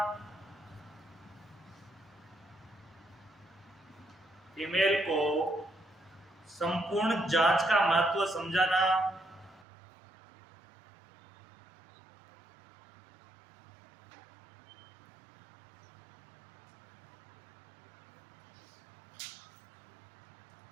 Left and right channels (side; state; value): left; drops out; at 9.7 s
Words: फीमेल को संपूर्ण जांच का महत्व समझाना,